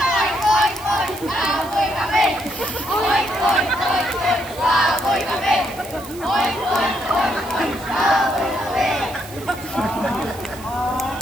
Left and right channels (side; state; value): right; noise; hiss, 18 dB below the sound